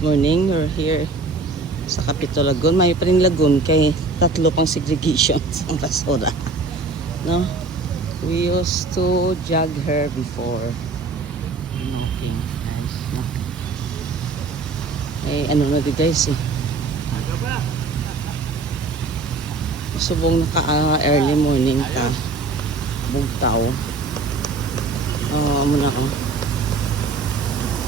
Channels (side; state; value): left; quieter; 3.8 dB